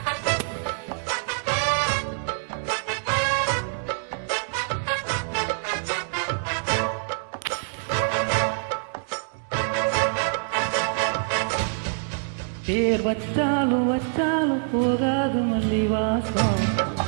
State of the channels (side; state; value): left; silent; digital silence